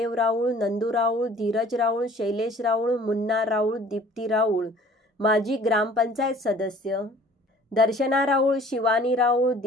राऊळ, नंदू राऊळ, धीरज राऊळ, शैलेश राऊळ, मुन्ना राऊळ, दीप्ती राऊळ, माजी ग्रामपंचायत सदस्य, दर्शना राऊळ, शिवानी राऊळ,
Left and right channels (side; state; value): both; normal; correlation 0.51